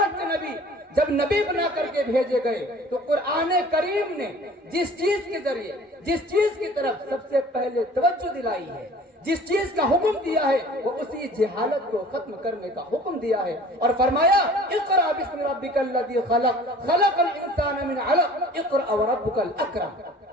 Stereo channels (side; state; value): both; normal; correlation 0.47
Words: کے نبی، جب نبی بنا کر کے بھیجے گئے تو قرآن کریم نے جس چیز کے ذریعے، جس چیز کی طرف سب سے پہلے توجہ دلائی ہے، جس چیز کا حکم دیا ہے، وہ اسی جہالت کو ختم کرنے کا حکم دیا ہے اور فرمایا اقرأ بسم ربک الذی خلق خلق الانسان من علق اقرأ وربک الاکرم۔